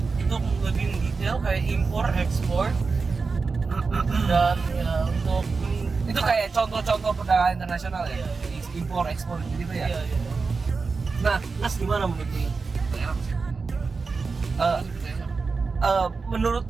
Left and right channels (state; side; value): quieter; left; 4.5 dB